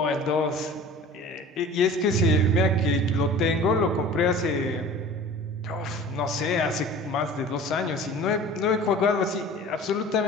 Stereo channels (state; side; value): normal; both; correlation 0.42